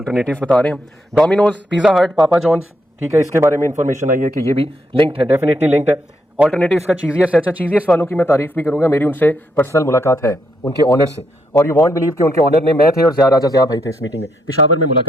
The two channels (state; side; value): normal; both; correlation 0.78